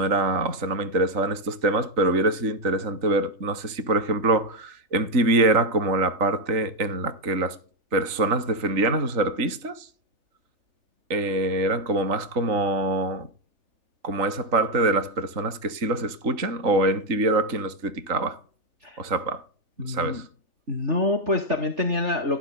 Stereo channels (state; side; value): late; left; 3.8 ms